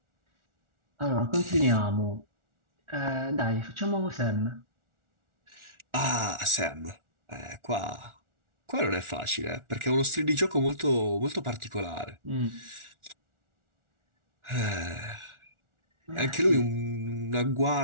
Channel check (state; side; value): late; left; 1.4 ms